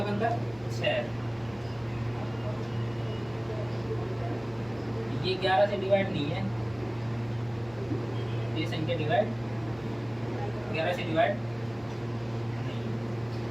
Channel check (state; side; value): noise; right; hum, 23 dB below the sound